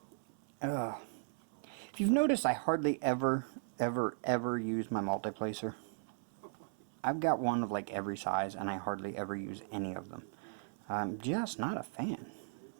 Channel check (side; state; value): left; silent; 53 dB below the other